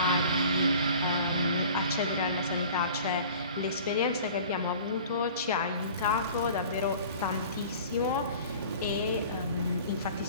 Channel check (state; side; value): inverted; both; correlation -0.44